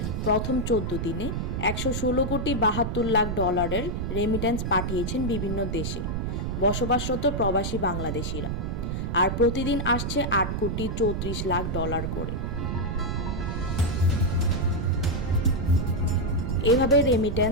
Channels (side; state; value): right; noise; rumble, 2 dB below the sound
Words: প্রথম 14 দিনে 116 কোটি 72 লাখ ডলারের রেমিটেন্স পাঠিয়েছেন বিভিন্ন দেশে বসবাসরত প্রবাসী বাংলাদেশিরা, আর প্রতিদিন আসছে 8 কোটি 34 লাখ ডলার করে। এভাবে